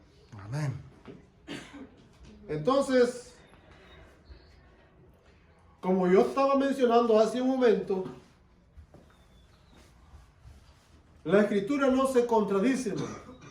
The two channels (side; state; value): both; identical; correlation 1.00